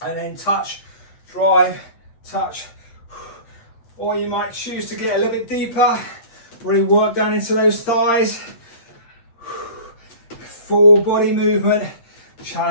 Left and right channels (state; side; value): late; right; 8.6 ms